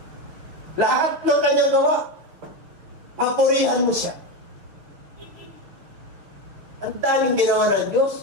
Lahat ng kanyang gawa, papurihan mo siya. Ang daming ginawa ng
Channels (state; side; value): late; left; 6.6 ms